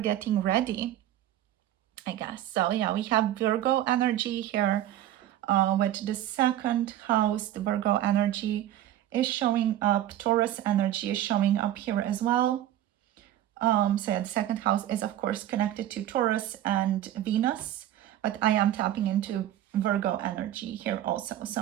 ready, I guess. So yeah, we have Virgo energy here with the second house. The Virgo energy is showing up. Taurus energy is showing up here as well. So yeah, the second house is of course connected to Taurus and Venus, but I am tapping into Virgo energy here also.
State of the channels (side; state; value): left; quieter; 12.6 dB